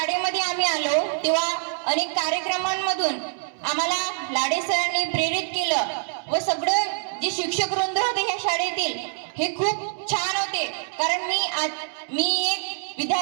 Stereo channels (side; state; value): left; silent; digital silence